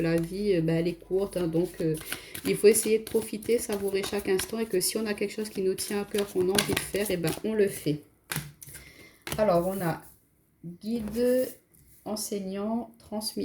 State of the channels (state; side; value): identical; both; correlation 1.00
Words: vie, elle est courte, hein. Donc il faut essayer de profiter, savourer chaque instant, et que si on a quelque chose qui nous tient à cœur, qu'on a envie de faire, et ben on le fait. Alors on a guide, enseignant,